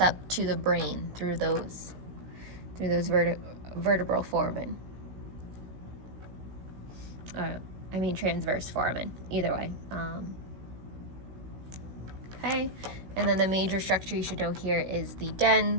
to the brain through those vertebral foramen. I mean transverse foramen, either way. Okay, and then the major structure you should know here is the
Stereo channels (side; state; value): left; late; 16 ms